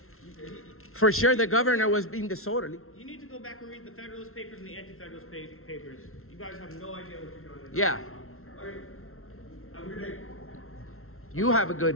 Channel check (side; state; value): right; late; 0.62 ms